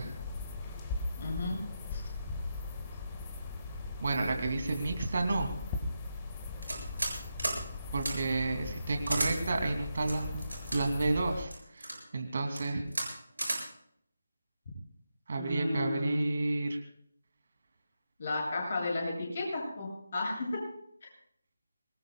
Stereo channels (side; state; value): both; inverted; correlation -0.87